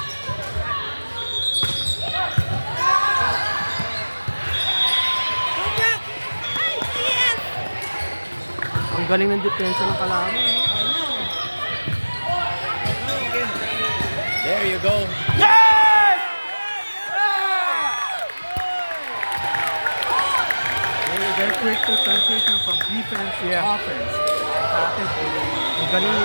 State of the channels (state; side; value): inverted; both; correlation -1.00